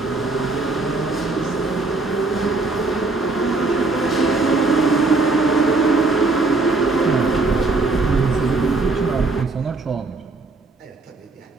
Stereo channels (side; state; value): left; quieter; 3.5 dB